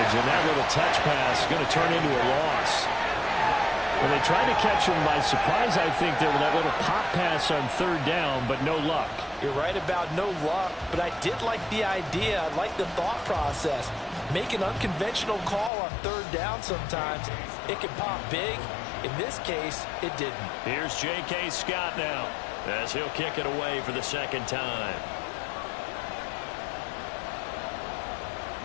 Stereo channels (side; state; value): right; drops out; at 15.7 s